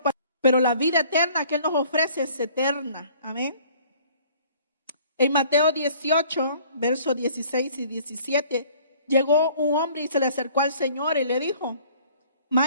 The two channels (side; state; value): both; inverted; correlation -0.55